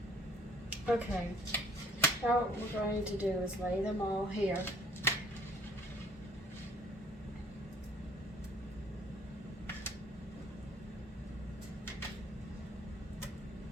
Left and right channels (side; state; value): both; normal; correlation 0.58